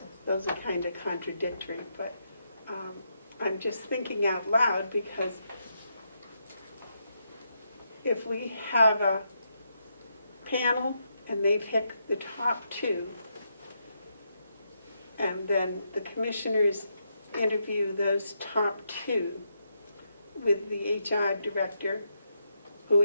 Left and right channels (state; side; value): inverted; both; correlation -0.80